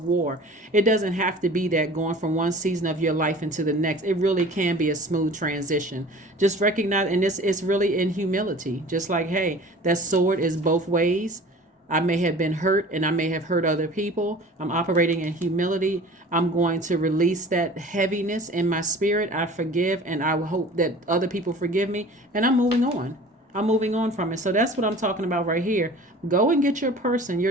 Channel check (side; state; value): both; normal; correlation 0.44